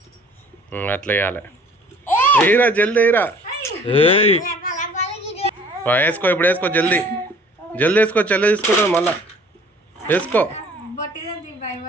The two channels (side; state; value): both; normal; correlation 0.53